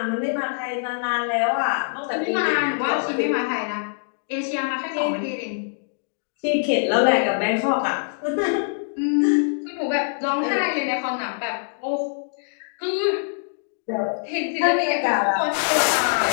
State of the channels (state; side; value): silent; right; digital silence